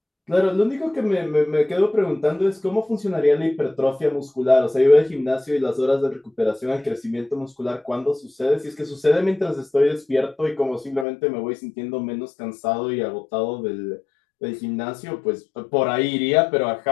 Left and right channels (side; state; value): right; drops out; at 11.1 s